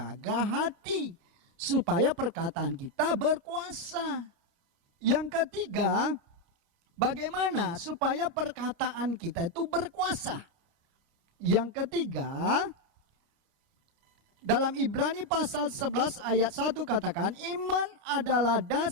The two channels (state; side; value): late; left; 29 ms